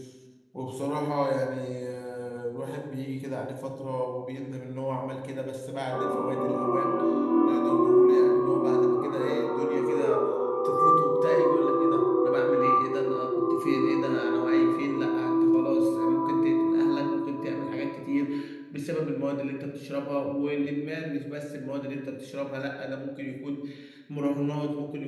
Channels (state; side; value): identical; both; correlation 1.00